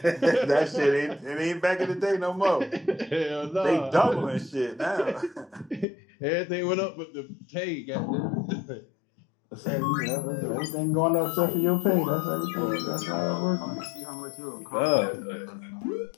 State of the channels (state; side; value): drops out; right; at 5.9 s